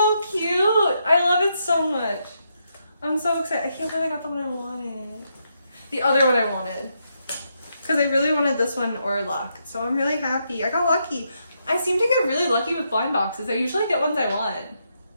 cute? I love it so much. I'm so excited. I can't believe I got the one I wanted. The other one I wanted. Because I really wanted this one or luck. So I'm really happy. I got lucky. I seem to get really lucky with blind boxes. I usually get ones I want.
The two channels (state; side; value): inverted; both; correlation -0.80